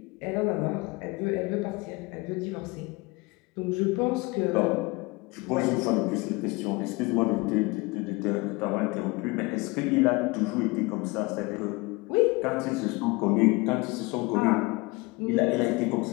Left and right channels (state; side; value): quieter; right; 25.0 dB